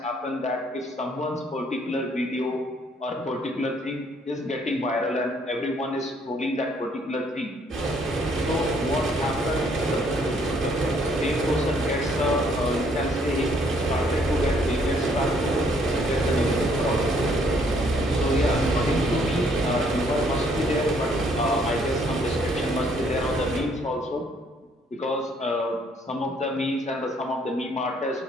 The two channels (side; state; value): both; normal; correlation 0.65